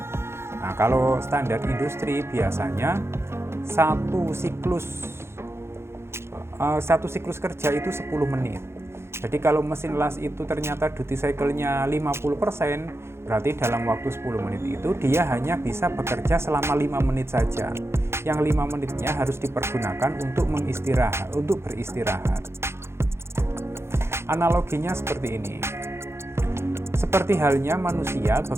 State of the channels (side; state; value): left; late; 0.12 ms